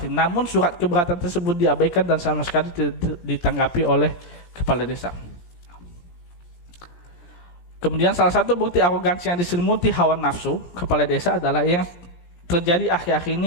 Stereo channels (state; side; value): late; right; 17 ms